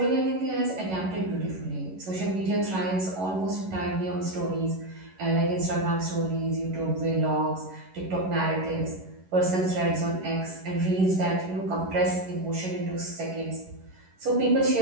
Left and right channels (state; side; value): late; left; 11 ms